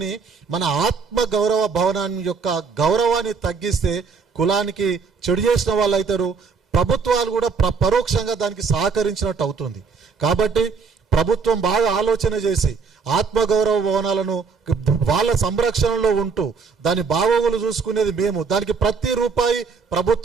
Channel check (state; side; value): quieter; left; 5.2 dB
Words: మన ఆత్మ గౌరవ భవనాన్ని యొక్క గౌరవాన్ని తగ్గిస్తే కులానికి చెడు చేసిన వాళ్ళు అవుతారు. ప్రభుత్వాలు కూడా పరోక్షంగా దానికి సహకరించినట్టు అవుతుంది. కాబట్టి ప్రభుత్వం బాగా ఆలోచన చేసి ఆత్మగౌరవ భవనాలను వాళ్ళ సంరక్షణలో ఉంటూ దాని బాగోగులు చూసుకునేది మేము, దానికి ప్రతి రూపాయి